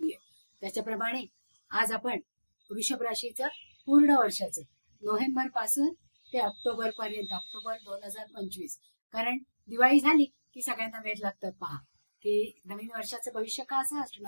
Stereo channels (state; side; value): inverted; both; correlation -1.00